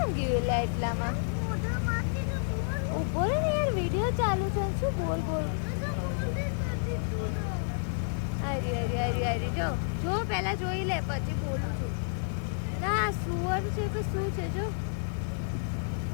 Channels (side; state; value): right; silent; 58 dB below the other